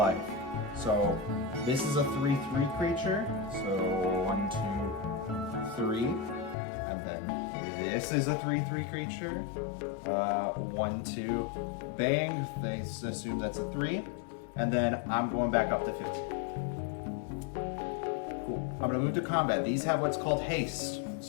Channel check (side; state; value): right; drops out; at 6.6 s